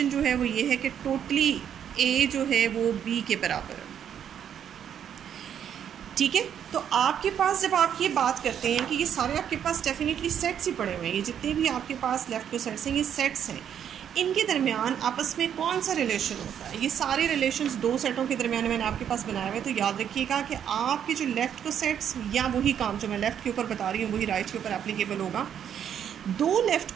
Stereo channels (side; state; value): left; quieter; 9.0 dB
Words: जो है वो ये है कि टोटली ए जो है वो बी के बराबर है, ठीक है। तो आपके पास जब आप ये बात करते हैं कि ये सारे आपके पास डेफिनेटली सेट्स ही पड़े हुए हैं, ये जितने भी आपके पास लेफ़्ट को सेट्स हैं ये सेट्स हैं, इनके दरमियान आपस में कौन सा रिलेशन होता है? ये सारे रिलेशंस दो सेटों के दरमियान मैंने आपके पास बनाए हुए। तो याद रखिएगा कि आपके जो लेफ़्ट को सेट्स, या वही काम जो मैं लेफ़्ट के ऊपर बता रही हूँ वही राइट के ऊपर एप्लीकेबल होगा। दो लेफ़्ट